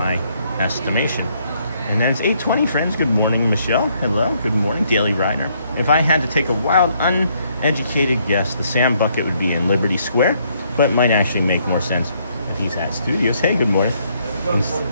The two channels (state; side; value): inverted; both; correlation -0.70